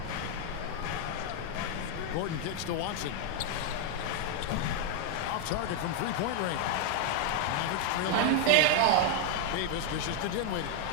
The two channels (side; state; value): both; different; correlation 0.00